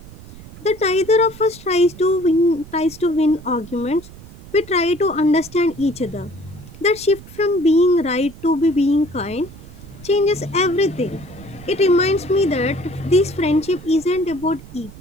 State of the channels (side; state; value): right; noise; rumble, 18 dB below the sound